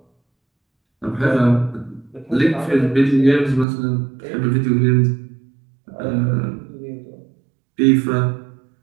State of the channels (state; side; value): drops out; left; at 3.7 s